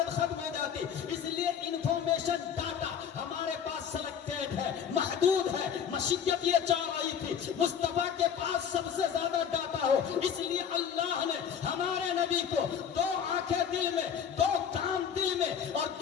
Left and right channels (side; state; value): right; quieter; 8.0 dB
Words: ختم ہو جاتی. اس لیے انفارمیشن ڈاٹا ہمارے پاس سلیکٹڈ ہے, محدود ہے. مشیت یہ چاہ رہی تھی مصطفیٰ کے پاس سب سے زیادہ ڈاٹا ہو, اس لیے اللہ نے ہمارے نبی کو دو آنکھیں دل میں, دو کان دل میں, اور